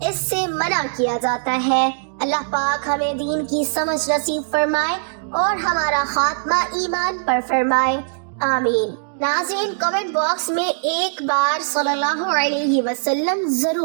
اس سے منع کیا جاتا ہے۔ اللہ پاک ہمیں دین کی سمجھ نصیب فرمائے اور ہمارا خاتمہ ایمان پر فرمائے، آمین۔ ناظرین، کمنٹ باکس میں ایک بار صلی اللہ علیہ وسلم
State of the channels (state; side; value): silent; left; digital silence